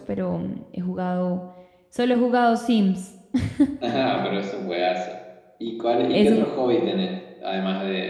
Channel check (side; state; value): both; identical; correlation 1.00